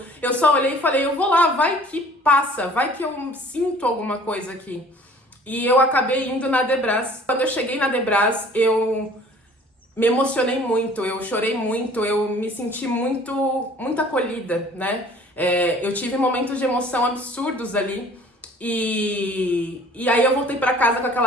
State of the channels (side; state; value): both; normal; correlation 0.51